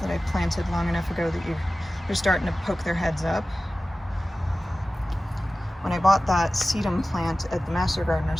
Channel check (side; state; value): both; normal; correlation 0.96